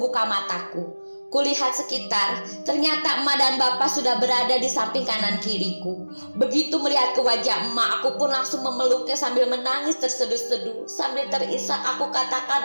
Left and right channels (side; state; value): both; inverted; correlation -1.00